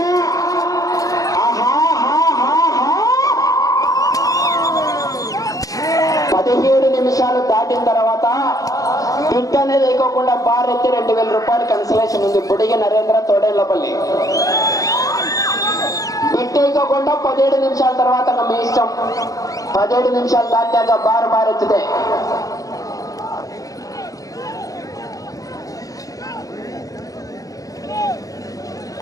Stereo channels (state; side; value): late; right; 0.17 ms